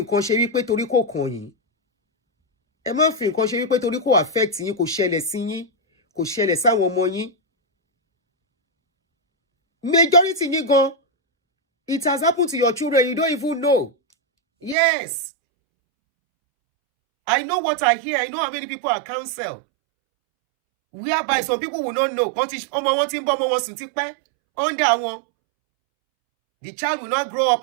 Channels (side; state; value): left; drops out; at 14.8 s